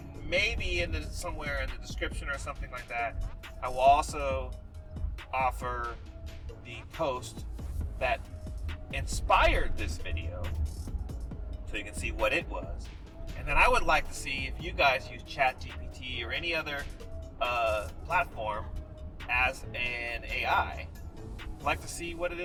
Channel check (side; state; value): both; identical; correlation 1.00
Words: maybe somewhere in the description or something like that, I will also offer the post that inspired this video so you can see what it was. And then I would like to see if you guys use ChatGPT or any other platform as an AI. I'd like to see what it